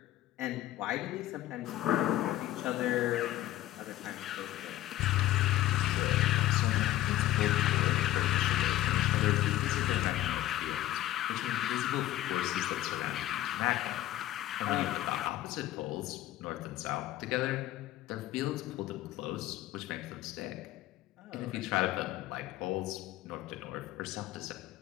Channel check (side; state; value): right; quieter; 14.7 dB